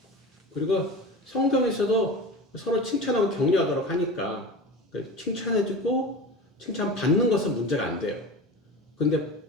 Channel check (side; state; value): both; normal; correlation 0.31